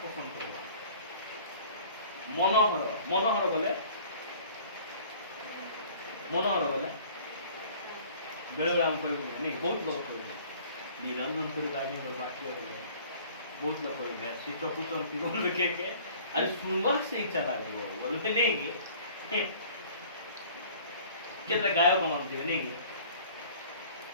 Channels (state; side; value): inverted; both; correlation -0.50